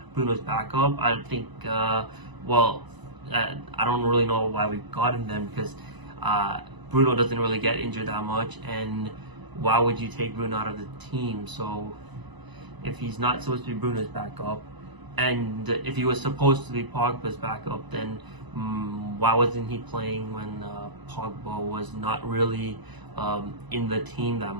Bruno's backup, I think I don't really know why we got him then, because Bruno doesn't really get injured that much, and why would you take Bruno out of the team? So if he's not supposed to be Bruno's backup, and if he was supposed to be Pogba's backup, then why wasn't he playing when Pogba was not really in the team that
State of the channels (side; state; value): left; late; 1.0 ms